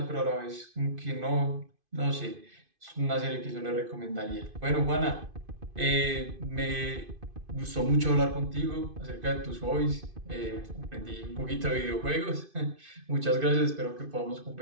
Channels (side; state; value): left; late; 2.5 ms